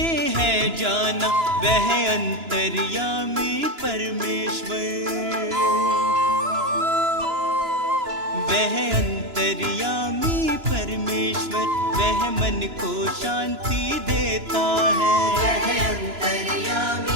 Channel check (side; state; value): left; late; 2.9 ms